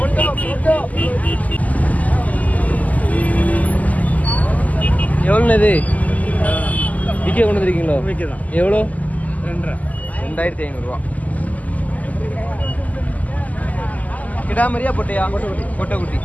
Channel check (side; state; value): right; late; 0.076 ms